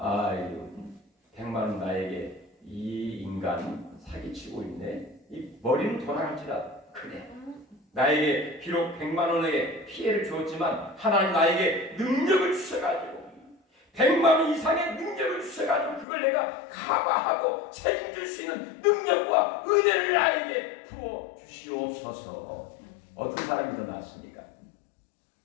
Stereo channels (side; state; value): right; drops out; at 16.1 s